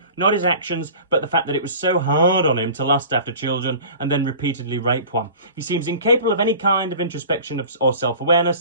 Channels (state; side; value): inverted; both; correlation -0.41